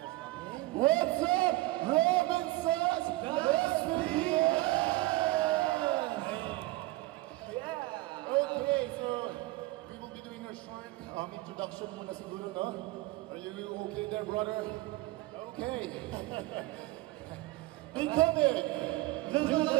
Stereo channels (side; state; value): left; quieter; 19.3 dB